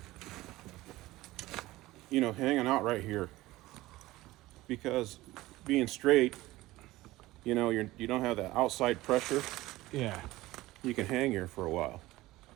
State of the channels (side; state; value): left; quieter; 18.0 dB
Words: you know, hanging out right here. Because being straight, you know, you don't have that outside pressure. Yeah. You can hang here for a while.